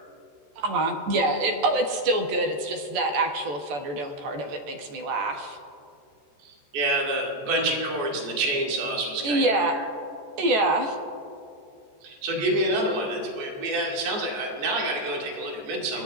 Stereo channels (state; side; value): late; left; 14 ms